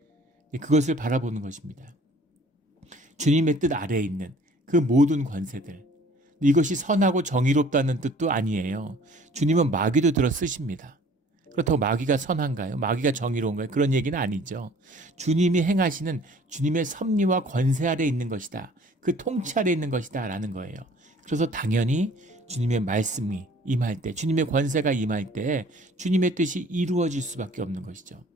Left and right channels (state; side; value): normal; both; correlation 0.52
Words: 그것을 바라보는 것입니다. 주님의 뜻 아래에 있는 그 모든 권세들. 이것이 선하고 정의롭다는 뜻도 아니에요. 주님은 마귀도 들어 쓰십니다. 그렇다고 마귀가 선한가요? 마귀가 정의로운가요? 그런 얘기는 아니죠. 주님이 행하시는 주님의 섭리와 권세 아래 있는 것이다. 그 통치 아래 있는 것이다 라는 거예요. 그래서 당연히 주님의 말씀이 임할 때, 주님의 권세가 임할 때 주님의 뜻이 이루어질 수밖에 없는 것이죠.